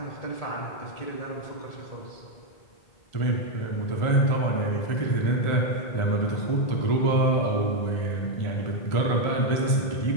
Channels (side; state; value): right; late; 1.4 ms